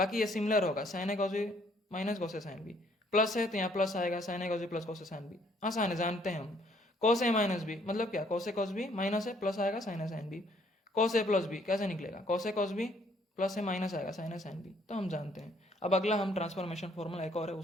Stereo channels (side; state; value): both; normal; correlation 0.65